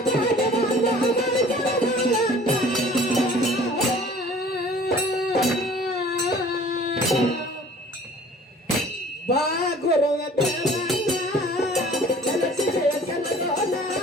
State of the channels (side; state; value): both; normal; correlation 0.49